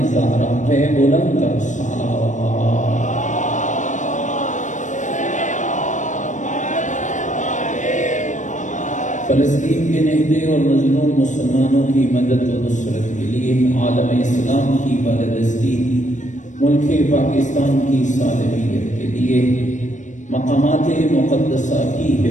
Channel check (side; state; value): right; late; 0.36 ms